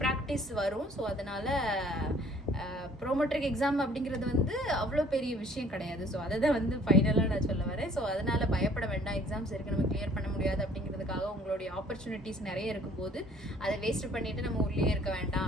ப்ராக்டிஸ் வரும். ஸோ அதனால் ப்ரோமெட்ரிக் எக்ஸாம் அப்படிங்கிறது வந்து அவ்வளோ பெரிய விஷயம் கிடையாது. ஸோ அதை தான் வந்து ஃபைனலாக நான் சொல்ல வரேன். ஸோ அதனால் பயப்பட வேண்டாம், எக்ஸாம்ஸ் இருக்குது நம்ம கிளியர் பண்ண முடியாது அப்படிங்கிறதுக்காக உங்களுடைய ஆப்பர்ச்சுனிட்டிஸ் நிறைய இருக்கும்போது அதை வேஸ்ட் பண்ணிவிட்டு நம்ம உள்ளே இருக்க வேண்டாம்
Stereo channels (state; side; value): normal; both; correlation 0.57